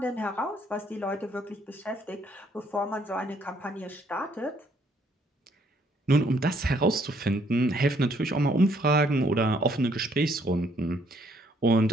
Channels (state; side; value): normal; both; correlation 0.67